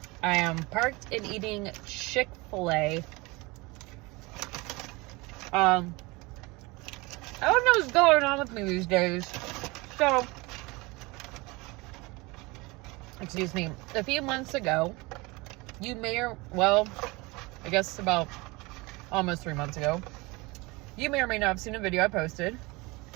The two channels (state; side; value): quieter; left; 24.4 dB